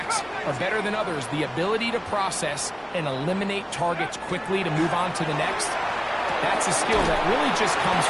are better than others. The ability to process and eliminate targets quickly to move on to the next, that's a skill that really just comes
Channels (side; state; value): both; identical; correlation 1.00